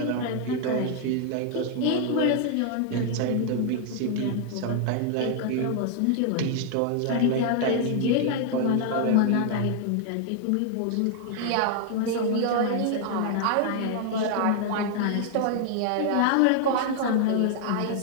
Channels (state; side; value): different; both; correlation 0.00